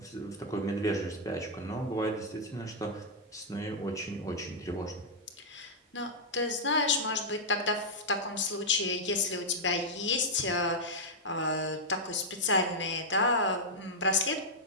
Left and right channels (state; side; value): normal; both; correlation -0.06